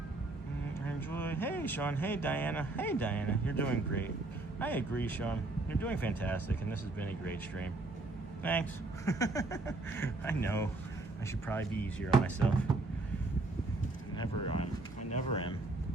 Enjoy. Hey, Sean. Hey, Diana. Hey, Diana. You're doing great. I agree, Sean. You're doing fantastic, and this has been a great stream. Thanks. I know. I should probably be easier on myself. I never am.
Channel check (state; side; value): quieter; left; 3.1 dB